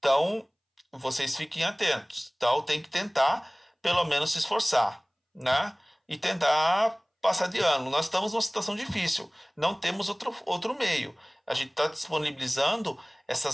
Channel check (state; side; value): identical; both; correlation 1.00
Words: vocês fiquem atentos. Então, tem que tentar, pelo menos, se esforçar, né? E tentar passar de ano. Nós estamos numa situação difícil. Não temos outro meio. A gente está disponibilizando